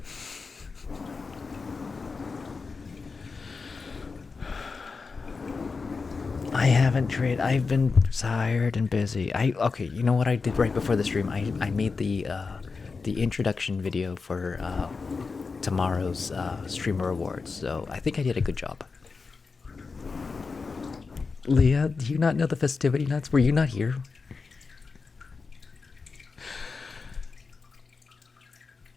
I haven't traded. I've been tired and busy. Okay. You know what I did right before the stream? I made the introduction video for tomorrow's streamer awards. So I think I did a good job. Leah, do you not know the festivity nuts? Were you not here?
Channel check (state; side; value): quieter; right; 4.6 dB